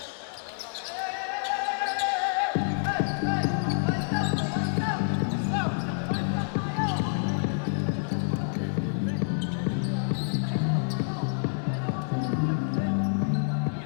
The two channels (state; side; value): silent; right; 59 dB below the other